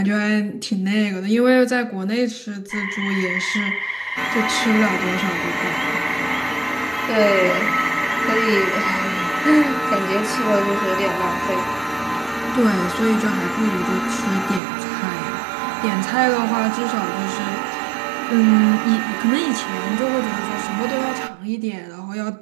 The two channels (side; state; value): left; drops out; at 14.6 s